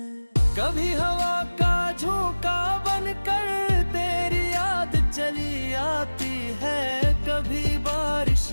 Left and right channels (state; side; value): inverted; both; correlation -1.00